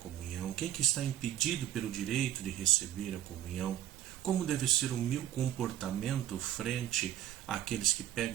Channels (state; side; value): quieter; left; 12.1 dB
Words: quem que está impedido pelo direito de receber a comunhão, como deve ser o meu comportamento frente àqueles que